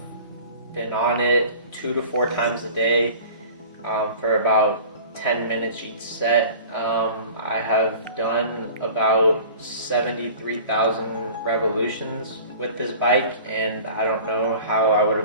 been on it 2 to 4 times a day for about 10 minutes each set. I have done about 73,000 revolutions with this bike, and I don't know how I would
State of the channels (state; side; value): inverted; both; correlation -0.42